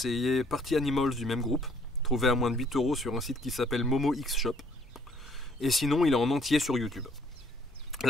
Party Animals du même groupe, trouvé à moins de 8 € sur un site qui s'appelle Momo X Shop. et sinon il est en entier sur YouTube.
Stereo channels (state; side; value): normal; both; correlation 0.62